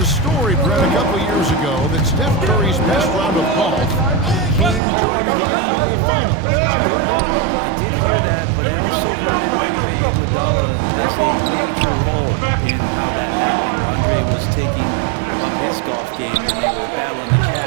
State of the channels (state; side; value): drops out; left; at 4.8 s